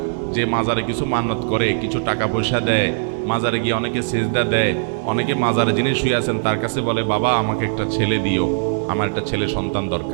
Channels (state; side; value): silent; left; digital silence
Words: যে মাজারে কিছু মান্নত করে, কিছু টাকা পয়সা দেয়, মাজারে গিয়ে অনেকে সেজদা দেয়, অনেকে মাজারে যিনি শুয়ে আছেন তার কাছে বলে, বাবা আমাকে একটা ছেলে দিও, আমার একটা ছেলে সন্তান